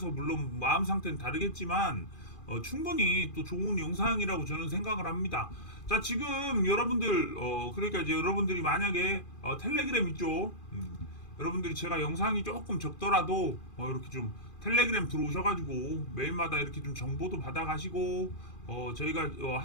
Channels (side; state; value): right; late; 2.4 ms